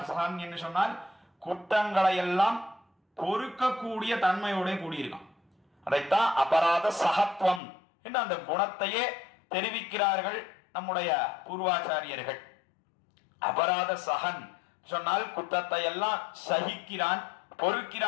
சகன் என்று சொன்னால் குற்றங்களை எல்லாம் பொறுக்கக்கூடிய தன்மையோட கூடியிருக்கான். அதைத்தான் அபராத சகத்துவம் என்று அந்த குணத்தையே தெரிவிக்கிறார்கள் நம்முடைய பூர்வாச்சாரியர்கள். அபராத சகன் சொன்னால் குற்றத்தை எல்லாம் சகிக்கிறான்,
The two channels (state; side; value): drops out; right; at 7.6 s